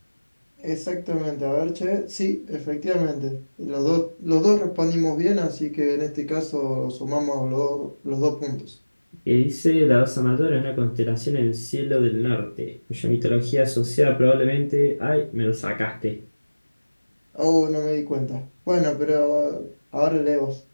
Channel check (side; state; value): both; inverted; correlation -1.00